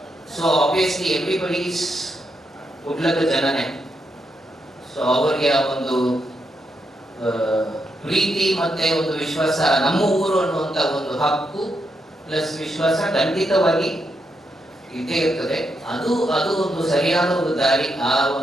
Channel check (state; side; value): normal; both; correlation 0.82